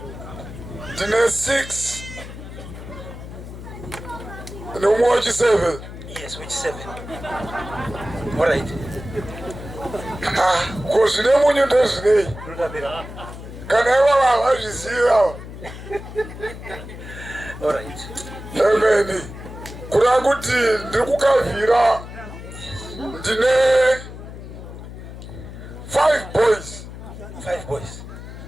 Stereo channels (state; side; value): noise; left; hum, 12 dB below the sound